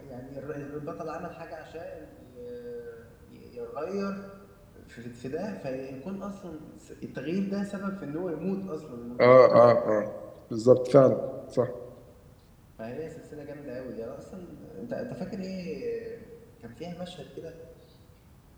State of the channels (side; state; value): both; identical; correlation 1.00